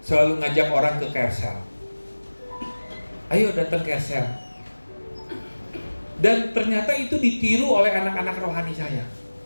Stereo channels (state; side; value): inverted; both; correlation -1.00